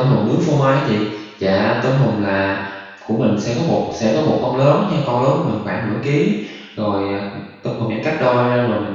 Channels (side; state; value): both; identical; correlation 1.00